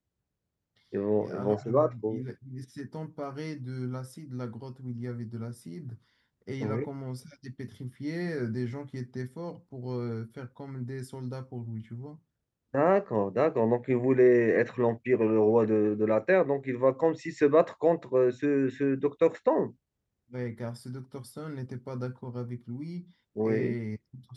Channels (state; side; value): identical; both; correlation 1.00